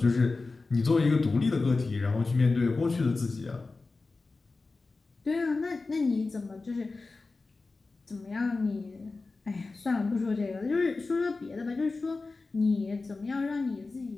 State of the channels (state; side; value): quieter; right; 3.7 dB